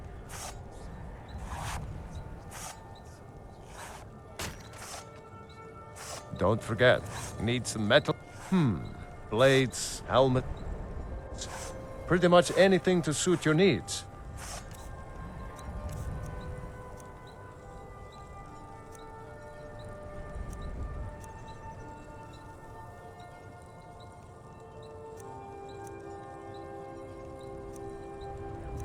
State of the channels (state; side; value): identical; both; correlation 1.00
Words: Don't forget, you need some metal. Blades, helmet. Pretty much anything to suit your needs.